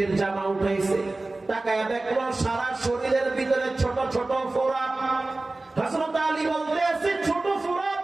জামা উঠাইছে তাকায়া দেখলো সারা শরীরের ভিতরে ছোট ছোট ফোঁড়া। হযরত আলী বলতে আছে ছোট ফোঁড়া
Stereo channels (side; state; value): left; quieter; 3.1 dB